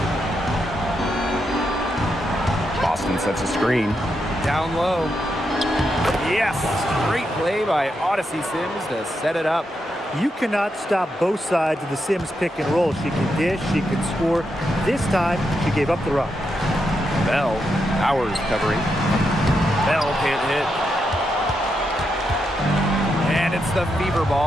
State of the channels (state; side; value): normal; both; correlation 0.83